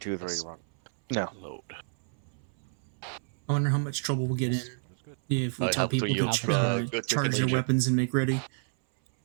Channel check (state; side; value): silent; left; 58 dB below the other